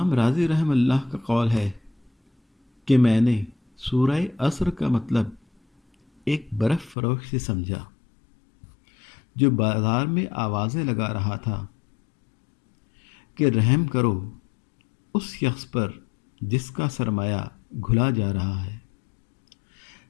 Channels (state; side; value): drops out; right; at 7.0 s